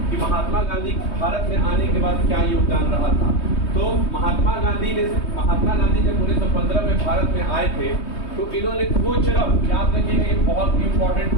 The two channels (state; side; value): late; right; 3.2 ms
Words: कि महात्मा गांधी भारत में आने के बाद क्या योगदान रहा था। तो महात्मा गांधी जब 1915 में भारत में आए थे, तो इन्होंने कोचरब, याद रखिएगा ये बहुत इंपॉर्टेंट